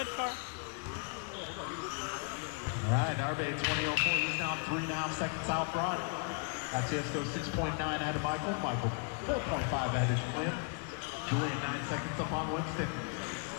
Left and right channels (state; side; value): quieter; right; 36.9 dB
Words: car. All right, Narbe 20.04, he's now 3.5 seconds out front. That's Cisco 6.9 ahead of Michael. Michael 4.5 ahead of Julian. Julian 9 seconds up on Winston.